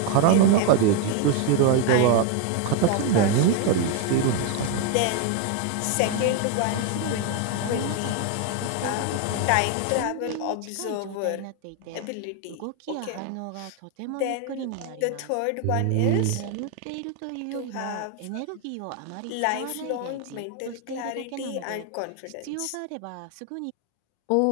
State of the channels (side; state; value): both; different; correlation 0.01